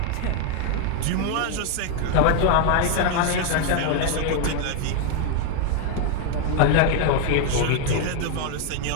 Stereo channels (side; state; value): both; different; correlation 0.00